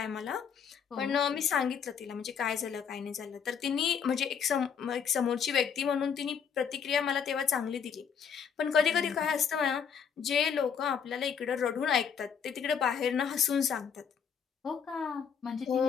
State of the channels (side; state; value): right; quieter; 7.1 dB